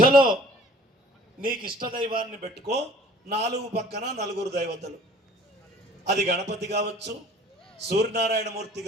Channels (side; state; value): both; normal; correlation 0.51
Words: నీకు ఇష్టదైవాన్ని పెట్టుకో, 4 పక్కన 4 దైవతలు. అది గణపతి కావచ్చు, సూర్యనారాయణమూర్తి